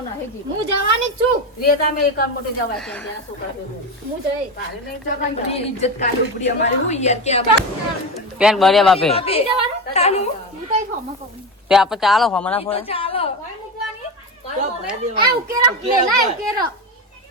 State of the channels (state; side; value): normal; both; correlation 0.19